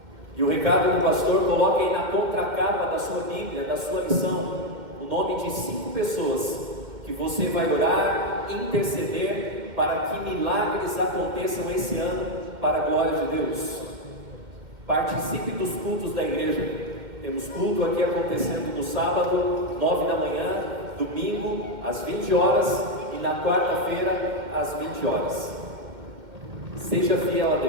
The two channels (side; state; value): left; late; 2.1 ms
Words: E o recado do pastor: coloque aí na contracapa da sua Bíblia, da sua lição, o nome de 5 pessoas que você vai orar, interceder para que milagres aconteçam esse ano para a glória de Deus. Participe dos cultos da igreja. Temos culto aqui acontecendo no sábado, 9 da manhã, domingo, às 20 horas e na quarta-feira, às 20 horas. Seja fiel a